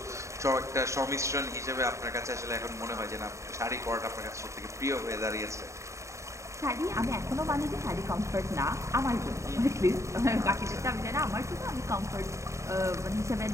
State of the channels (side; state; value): left; late; 0.14 ms